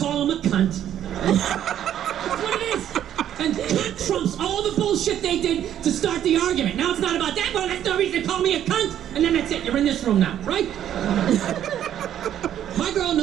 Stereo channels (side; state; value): left; quieter; 10.7 dB